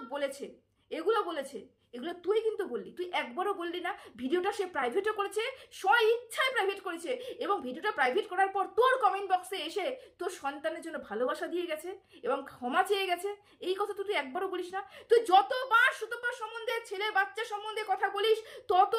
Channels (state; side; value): identical; both; correlation 1.00